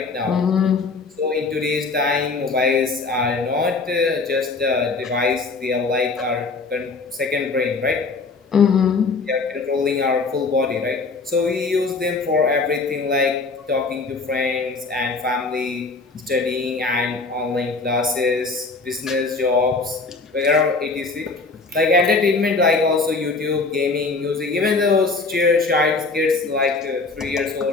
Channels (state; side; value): quieter; right; 4.0 dB